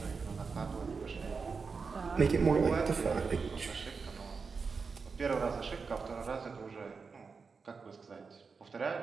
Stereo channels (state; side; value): quieter; left; 5.0 dB